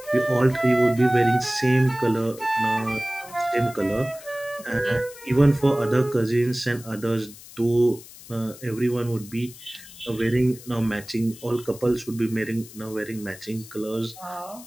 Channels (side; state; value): left; noise; hiss, 18 dB below the sound